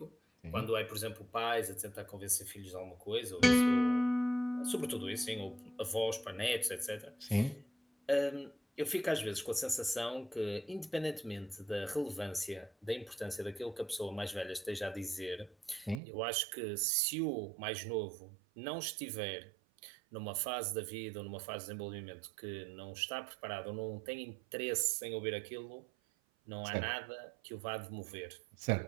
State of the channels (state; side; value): drops out; left; at 16.0 s